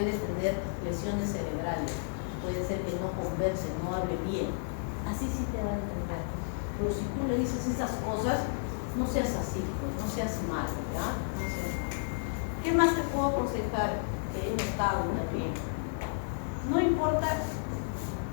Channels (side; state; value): right; silent; digital silence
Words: tener lesiones cerebrales, puede ser que no converse, no hable bien. Así sí te va a entender. Pero si tú le dices esas cosas, no seas así, pues, no seas malo, ¿ya? No seas malo. ¿Qué más te puedo aconsejar? Que he notado también. No importa,